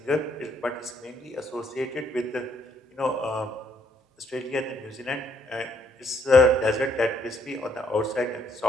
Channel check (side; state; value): both; normal; correlation 0.70